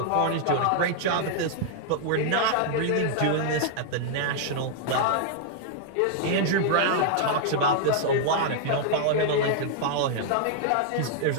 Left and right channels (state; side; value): different; both; correlation -0.01